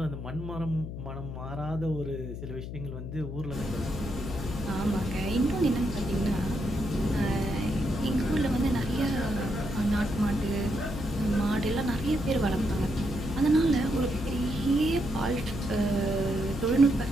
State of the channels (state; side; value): noise; left; hum, 7 dB below the sound